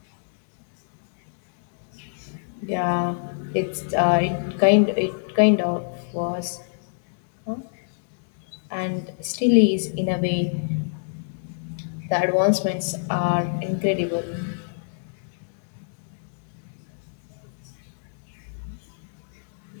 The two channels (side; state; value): right; silent; digital silence